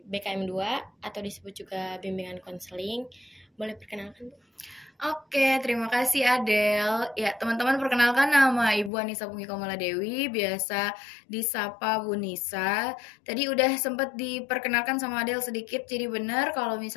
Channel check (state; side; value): drops out; right; at 8.9 s